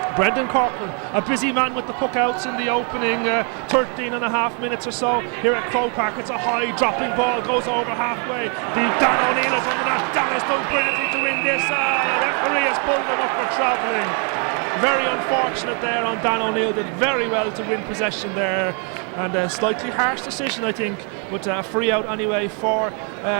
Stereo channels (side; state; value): left; quieter; 39.0 dB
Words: Brendan Corcoran, a busy man with the puck outs in the opening 13 and a half minutes or so here at Croke Park. It's a high dropping ball, goes over halfway. Dan O'Neill is under that. Dan has done brilliantly to win this. The referee has pulled him up for travelling. Very unfortunate there on Dan O'Neill, did very well to win possession there, and a slightly harsh decision I think, but a free out anyway for